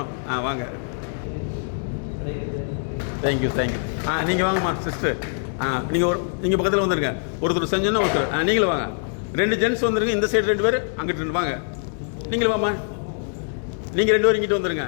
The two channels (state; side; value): silent; right; digital silence